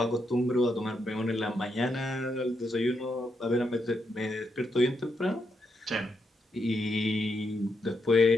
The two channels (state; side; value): normal; both; correlation 0.81